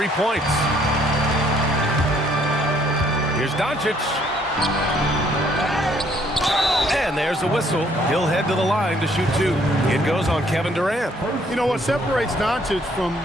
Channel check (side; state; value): both; normal; correlation 0.65